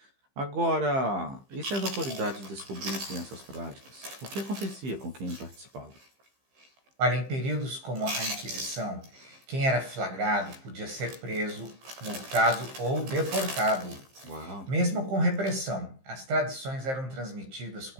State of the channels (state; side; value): late; left; 15 ms